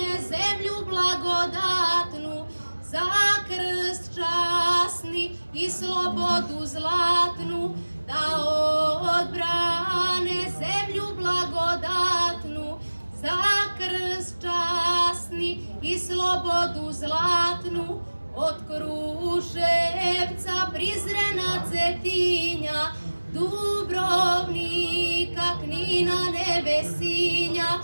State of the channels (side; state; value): both; inverted; correlation -1.00